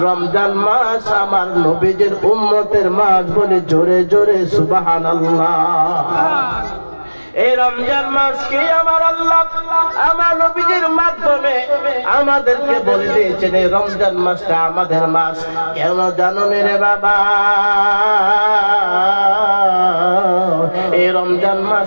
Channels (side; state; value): both; inverted; correlation -1.00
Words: রমজান মাস আমার নবীজির উম্মতের মাস বলে জোরে জোরে সুবহানাল্লাহ। এই রমজান মাসকে আমার আল্লাহ আমার নবীজির মাধ্যমে আমাদেরকে বলে দিয়েছেন এই রমজান মাসটা আমাদের মাস। কেন জানো রে বাবা? এই রমজান